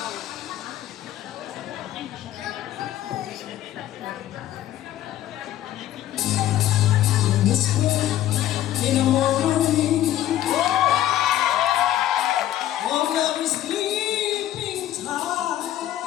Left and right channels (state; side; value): quieter; right; 12.7 dB